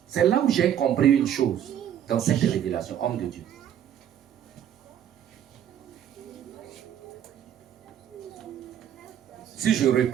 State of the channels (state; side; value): quieter; left; 9.9 dB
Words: C'est là où j'ai compris une chose dans cette révélation, homme de Dieu. Si je